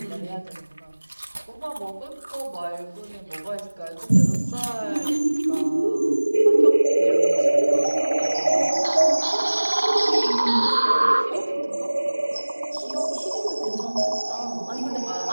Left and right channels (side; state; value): both; inverted; correlation -1.00